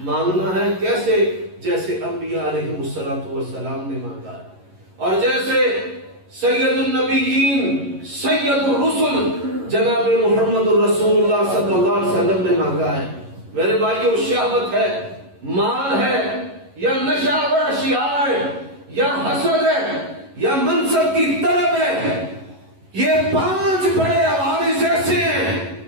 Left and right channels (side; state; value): left; late; 11 ms